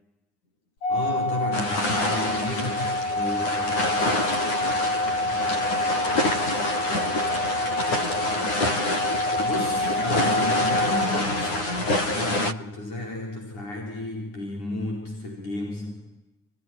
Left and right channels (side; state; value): right; late; 9.8 ms